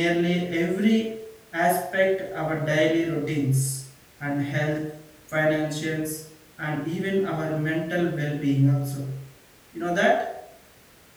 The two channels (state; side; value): identical; both; correlation 1.00